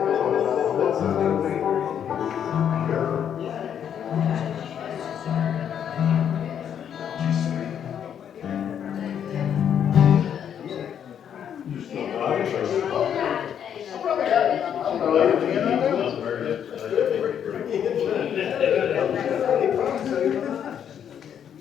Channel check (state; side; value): quieter; right; 8.8 dB